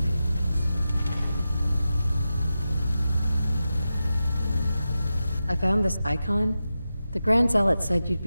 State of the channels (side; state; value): both; inverted; correlation -0.92